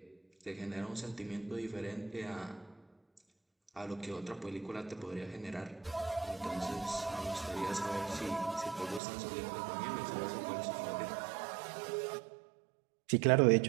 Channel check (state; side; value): drops out; left; at 9.0 s